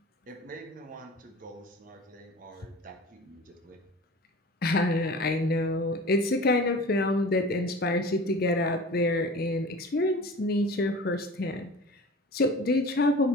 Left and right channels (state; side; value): normal; both; correlation 0.39